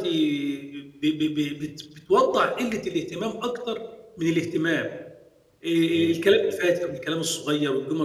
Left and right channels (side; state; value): both; identical; correlation 1.00